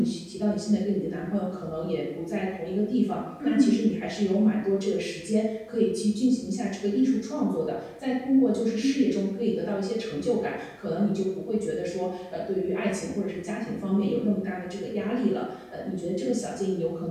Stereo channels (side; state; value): both; identical; correlation 1.00